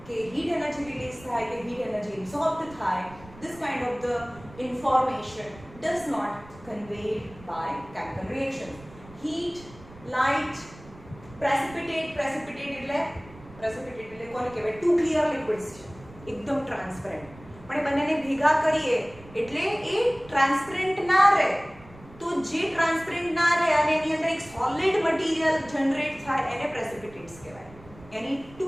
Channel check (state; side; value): noise; right; rumble, 20 dB below the sound